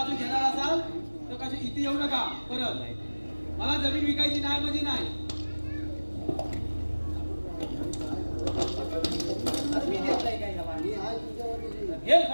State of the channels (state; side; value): inverted; both; correlation -1.00